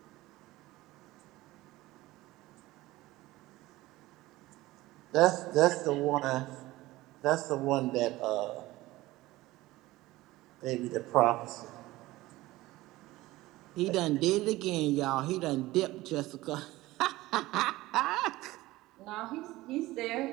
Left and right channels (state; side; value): quieter; left; 18.2 dB